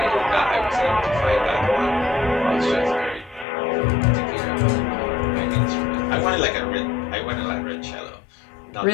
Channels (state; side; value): drops out; right; at 3.5 s